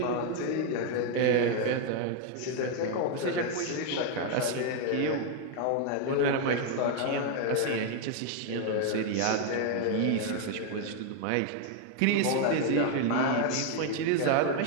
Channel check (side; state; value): both; different; correlation 0.01